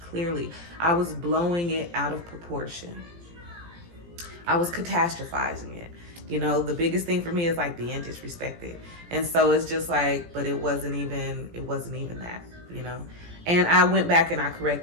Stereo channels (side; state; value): left; late; 17 ms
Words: I was blowing it out of proportion. I was catastrophizing it. The biggest thing for me is like being disrespected. And so it's just like, but it wasn't even that, And I went back and I